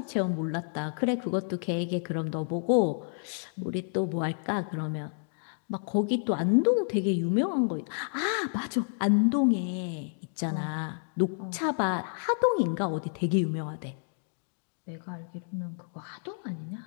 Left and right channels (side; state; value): right; silent; digital silence